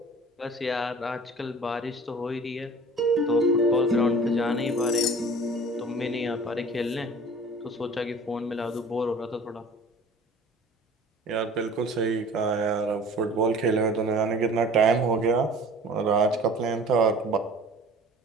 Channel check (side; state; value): both; normal; correlation 0.45